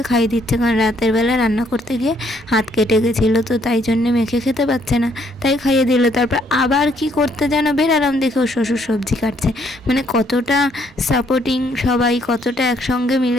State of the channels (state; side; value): normal; both; correlation 0.68